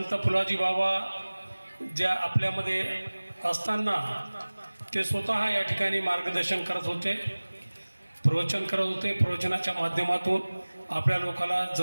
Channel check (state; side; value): inverted; both; correlation -1.00